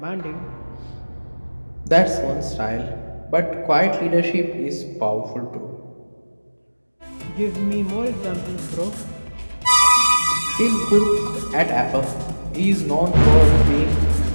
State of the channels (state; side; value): inverted; both; correlation -1.00